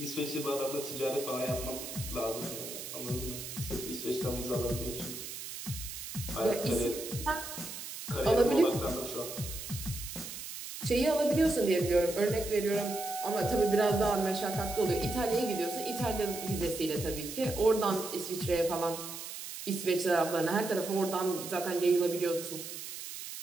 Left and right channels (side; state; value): right; noise; hiss, 9 dB below the sound